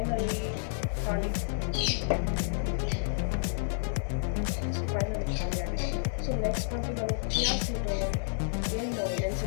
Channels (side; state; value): right; silent; digital silence